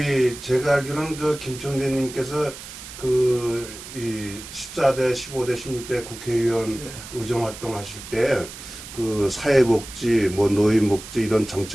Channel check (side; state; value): right; noise; hiss, 13 dB below the sound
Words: 제가 알기로는 저 김청래님께서 이 14대, 15대, 16대 국회의원 의정 활동하실 때 그 사회복지, 뭐 노인복지 이런